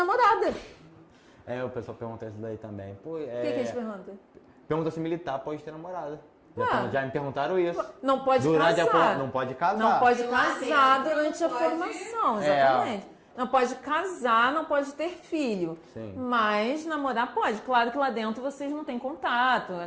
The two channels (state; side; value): identical; both; correlation 1.00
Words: O pessoal pergunta isso daí também. O que eles perguntam? Pergunta se militar pode ter namorada. Já me perguntaram isso. Não pode casar. Não pode casar. Não pode casar durante a formação, exatamente. Não pode casar, não pode ter filho. Sim. Mas namorar pode. Claro que lá dentro vocês não têm contato,